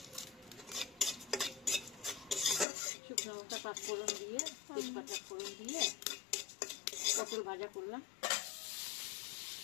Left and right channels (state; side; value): drops out; right; at 2.7 s